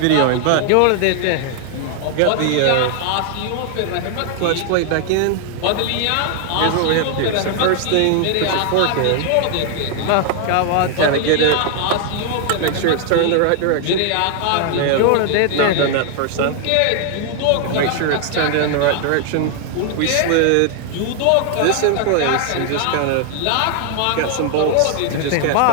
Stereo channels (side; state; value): both; different; correlation 0.00